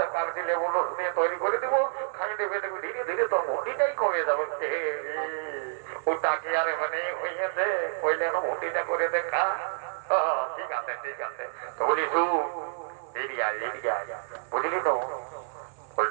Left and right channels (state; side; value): silent; left; 59 dB below the other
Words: কার দিলে বলো দিয়ে তৈরি করে দেবো, খাই দেবে দেবো, ধীরে ধীরে তোর ভুটিটাই কমে যাবে। ওটা কি আর মানে হইয়াছে, ওই যেন ভুটিটা করে দেখা। ঠিক আছে তো বলি এরিয়া বুঝলি তো?